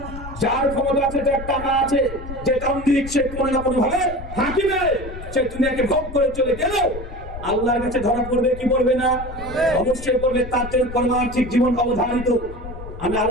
যার ক্ষমতা আছে, যার টাকা আছে, যে তান্ত্রিক, সে কোনো না কোনো ভাবে হাকিমে সে দুনিয়াকে ভোগ করে চলে গেল, আল্লাহর কাছে ধরা পড়বে কি পড়বে না? অবশ্যই পড়বে। তার জন্য পারমার্থিক জীবন অবধারিত। আমি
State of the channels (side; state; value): left; noise; rumble, 11 dB below the sound